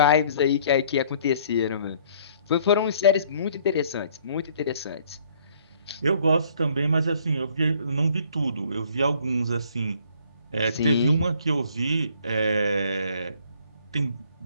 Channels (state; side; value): inverted; both; correlation -0.60